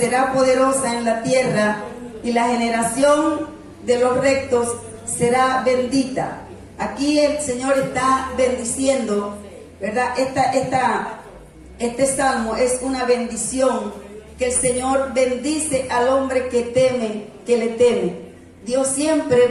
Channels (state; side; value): identical; both; correlation 1.00